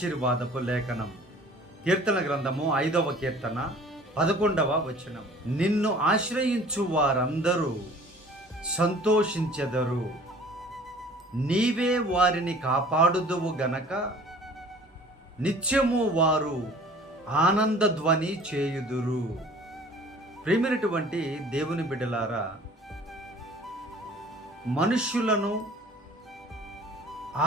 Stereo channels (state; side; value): normal; both; correlation 0.49